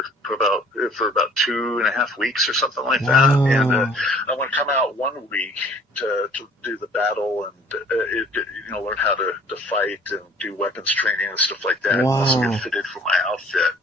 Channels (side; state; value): both; normal; correlation 0.53